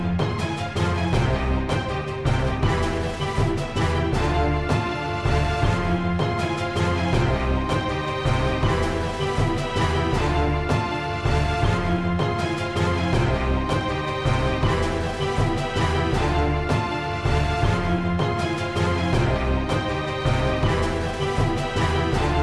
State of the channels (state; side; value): identical; both; correlation 1.00